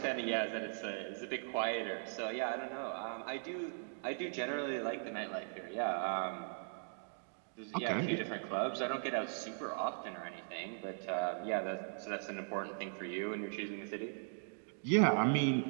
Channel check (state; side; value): silent; left; digital silence